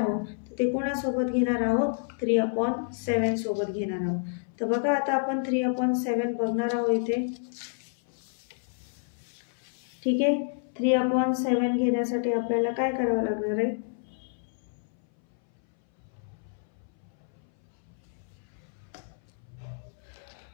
तर ते कोणासोबत घेणार आहोत 3/7 सोबत घेणार आहोत. तर बघा आता आपण 3/7 बघणार आहोत इथे. ठीक आहे. 3/7 घेण्यासाठी आपल्याला काय करावं लागणार आहे,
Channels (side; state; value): right; silent; 59 dB below the other